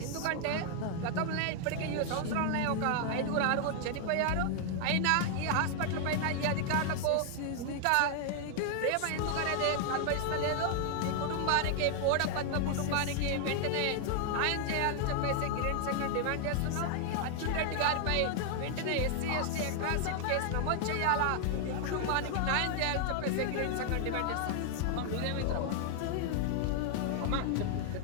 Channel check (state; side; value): different; both; correlation 0.00